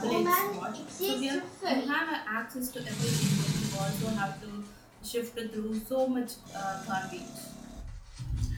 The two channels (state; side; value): identical; both; correlation 1.00